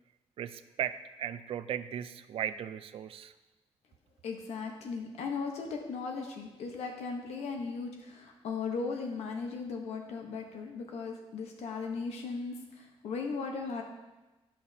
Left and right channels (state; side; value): normal; both; correlation 0.42